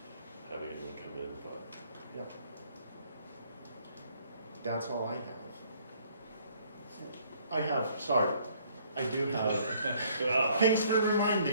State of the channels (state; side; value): inverted; both; correlation -0.62